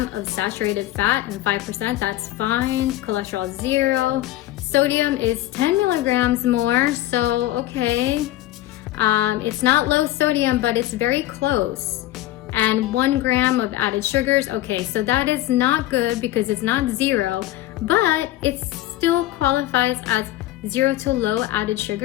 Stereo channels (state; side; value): quieter; right; 15.2 dB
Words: of saturated fat and 5%, that's fine. Cholesterol 0. Sodium is 10 milligrams more, so okay. It's not low sodium, but it's very close. And 1 gram of added sugars, okay, so that is not good because it's not 0, but it still qualifies as 0 to low added